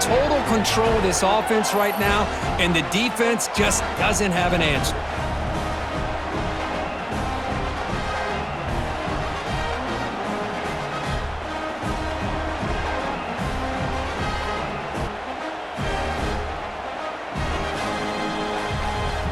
total control of this offense right now, and the defense just doesn't have an answer.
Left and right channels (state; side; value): identical; both; correlation 1.00